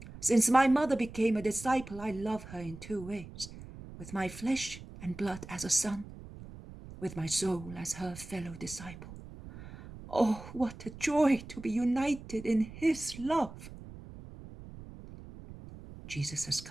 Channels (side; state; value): right; noise; rumble, 15 dB below the sound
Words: Since my mother became a disciple, I love her in two ways, with my flesh and blood as a son, with my soul as her fellow disciple. Oh, what a joy to be united in his love! Jesus has